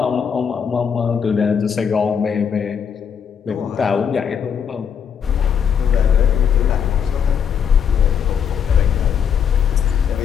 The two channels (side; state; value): right; quieter; 7.5 dB